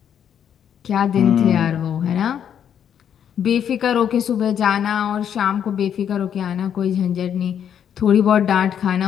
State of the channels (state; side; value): quieter; right; 8.9 dB